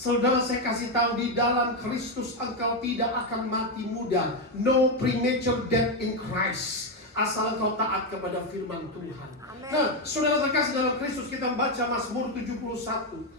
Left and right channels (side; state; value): both; normal; correlation 0.06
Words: saya kasih tahu, di dalam Kristus engkau tidak akan mati muda. No premature death in Christ. Asal kau taat kepada firman Tuhan. Amen. Nah, saudara terkasih dalam Kristus, kita baca Mazmur 71